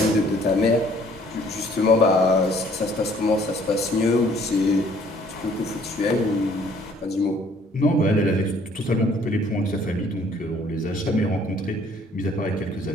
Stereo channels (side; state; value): both; normal; correlation 0.59